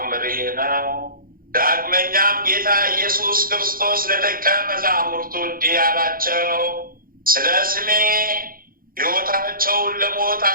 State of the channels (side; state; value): left; late; 0.42 ms